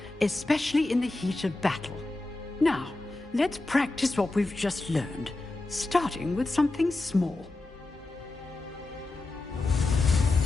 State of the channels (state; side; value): quieter; right; 3.0 dB